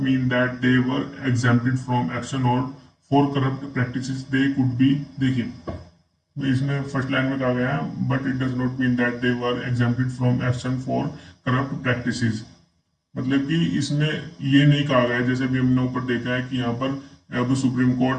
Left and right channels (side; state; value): both; identical; correlation 1.00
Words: mean that they were exempted from action और for corrupt practices they could be. देखिए इसमें फर्स्ट लाइन में कहा गया है but it does not mean that they were exempted from action for corrupt practices. मतलब कि इसमें ये नहीं कहा गया जैसे भी हमने ऊपर देखा है कि यहाँ पर अब सुप्रीम